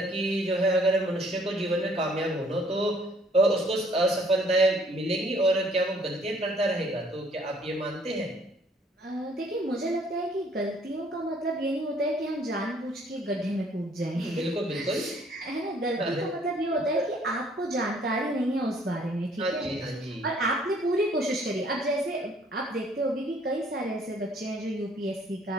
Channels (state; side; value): normal; both; correlation 0.61